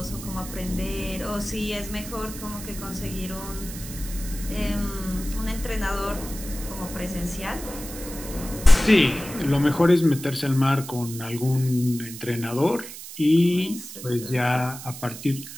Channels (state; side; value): noise; right; hiss, 12 dB below the sound